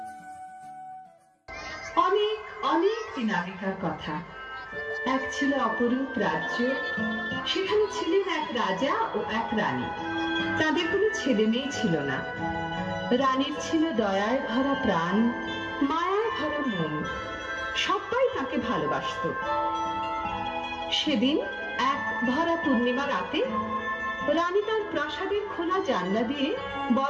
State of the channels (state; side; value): identical; both; correlation 1.00